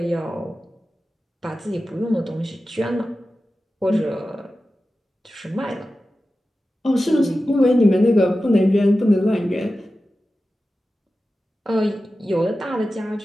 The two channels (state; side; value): normal; both; correlation 0.94